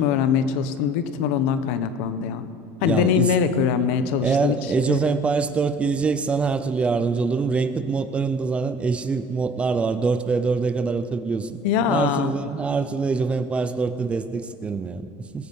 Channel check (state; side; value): normal; both; correlation 0.49